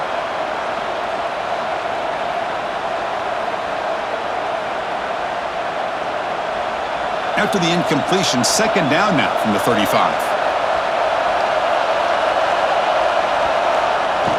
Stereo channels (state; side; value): identical; both; correlation 1.00